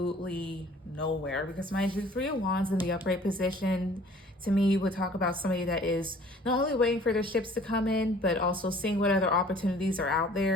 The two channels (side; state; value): both; normal; correlation 0.52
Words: nowhere. Because mind you, 3 of Wands in the upright position, to me, would talk about somebody that is not only waiting for their ships to come in, but also seeing what other opportunities are out